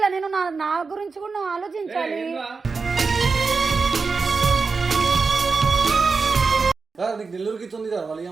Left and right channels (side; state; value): left; quieter; 4.6 dB